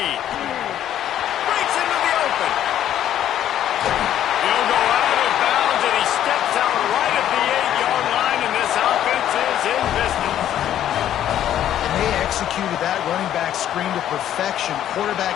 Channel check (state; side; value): quieter; right; 11.2 dB